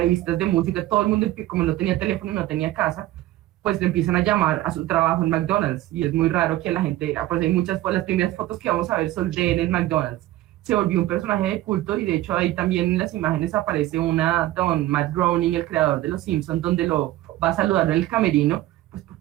de música, todo el mundo, como no tenía teléfono y no tenía casa, pues le empiezan a llamar a su trabajo en McDonald's, y es muy raro que la gente, pues hay muchas, las primeras fotos que vamos a ver son de él en McDonald's. Se volvió un personaje de culto, y de hecho ahí también en las imágenes aparece don Matt Groening, el creador de Los Simpsons, donde lo va a saludar en el camerino, pues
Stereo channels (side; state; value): left; quieter; 15.5 dB